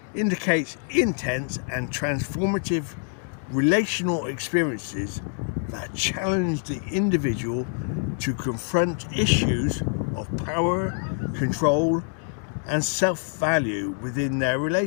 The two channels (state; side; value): silent; right; 57 dB below the other